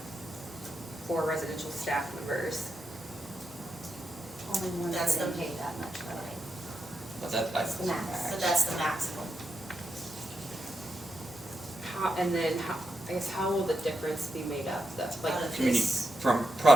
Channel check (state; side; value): normal; both; correlation 0.85